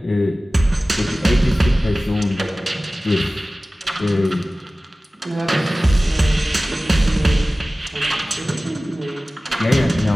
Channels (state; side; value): normal; both; correlation 0.97